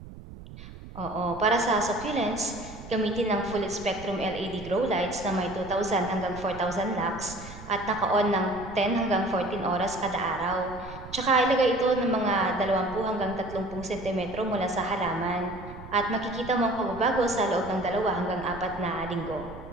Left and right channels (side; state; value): right; noise; rumble, 15 dB below the sound